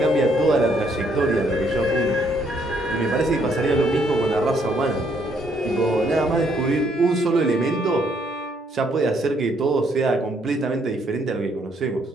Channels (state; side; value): normal; both; correlation 0.69